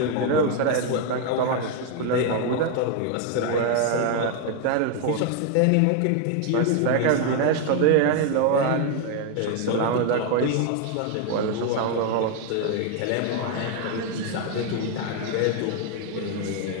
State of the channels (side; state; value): both; different; correlation 0.01